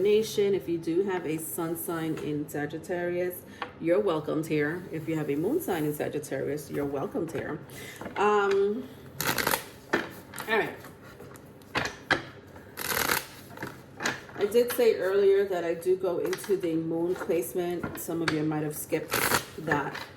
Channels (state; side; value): identical; both; correlation 1.00